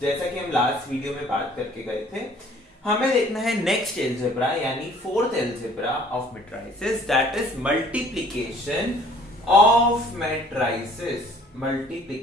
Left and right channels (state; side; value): normal; both; correlation 0.55